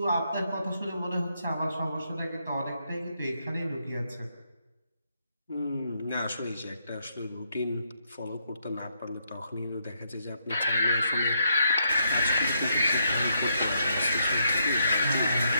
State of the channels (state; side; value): inverted; both; correlation -0.76